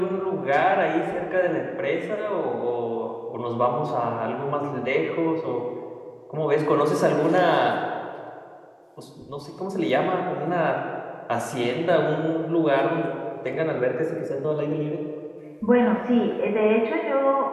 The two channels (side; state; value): both; identical; correlation 1.00